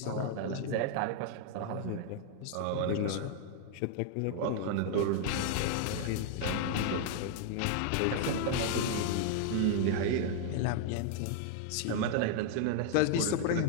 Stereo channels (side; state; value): both; different; correlation 0.00